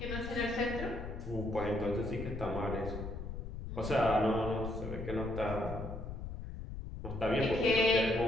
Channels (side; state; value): left; noise; rumble, 7 dB below the sound